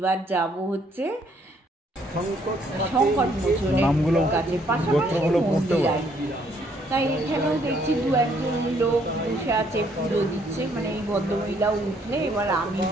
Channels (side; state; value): both; normal; correlation 0.67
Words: যাব হচ্ছে সংকট মোচনের কাছে, পাশাপাশি মন্দির আর কি। তাই এখানেও দেখছি 2-1জন লোক বসে আছে, পুজো দিচ্ছে। মানে এই ভদ্রমহিলাও উঠলে এবার আমি